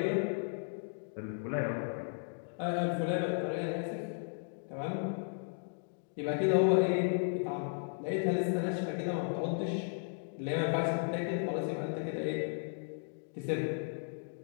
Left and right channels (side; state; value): right; silent; digital silence